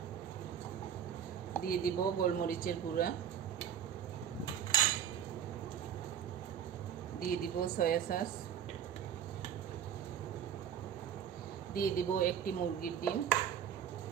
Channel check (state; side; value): quieter; left; 9.0 dB